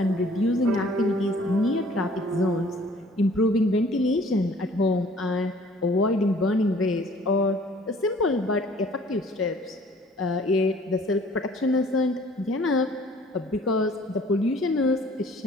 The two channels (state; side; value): normal; both; correlation 0.54